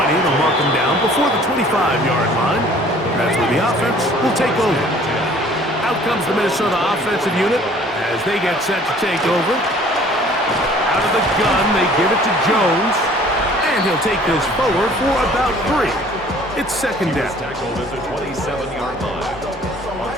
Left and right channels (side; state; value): both; normal; correlation 0.53